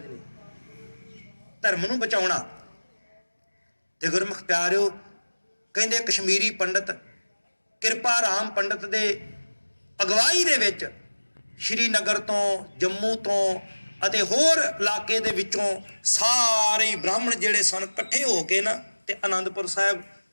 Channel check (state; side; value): inverted; both; correlation -1.00